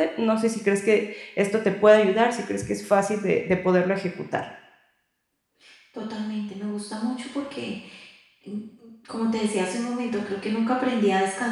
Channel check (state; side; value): identical; both; correlation 1.00